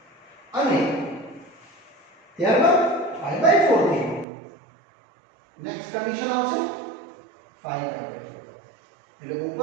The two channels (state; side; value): drops out; left; at 4.2 s